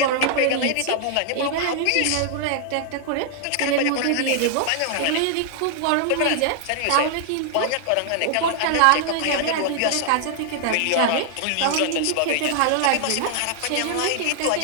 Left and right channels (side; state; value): both; different; correlation -0.01